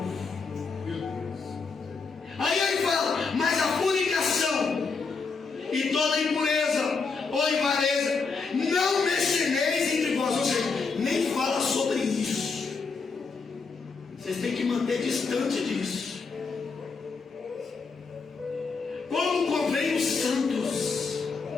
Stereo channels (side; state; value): right; quieter; 4.7 dB